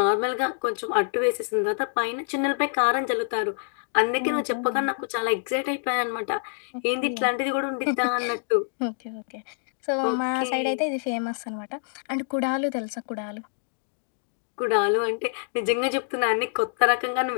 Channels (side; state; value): right; silent; digital silence